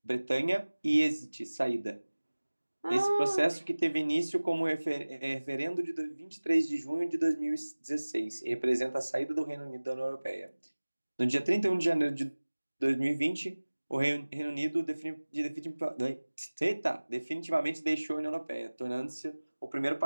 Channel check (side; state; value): both; inverted; correlation -1.00